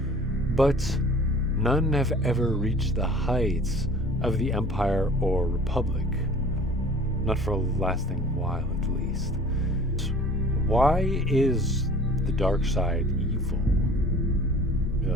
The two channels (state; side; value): normal; both; correlation 0.46